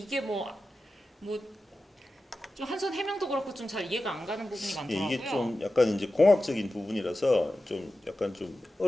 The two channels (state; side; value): normal; both; correlation 0.93